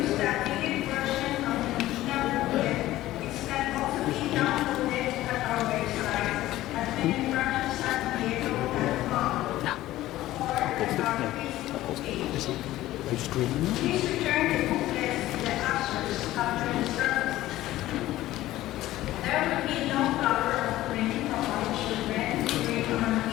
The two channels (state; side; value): quieter; right; 15.5 dB